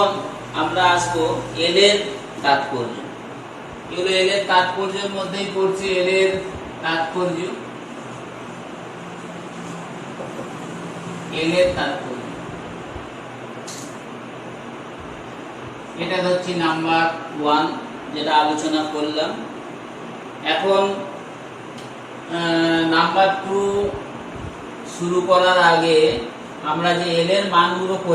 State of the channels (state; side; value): identical; both; correlation 1.00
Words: আমরা আসবো এল এর তাৎপর্য। এগুলো এল এর তাৎপর্যের মধ্যেই পড়ছে। এল এর তাৎপর্য, এল এর তাৎপর্য এটা হচ্ছে নাম্বার 1 যেটা আলোচনা করলাম। এখন নাম্বার 2 শুরু করার আগে আমরা যে এল এর মানগুলো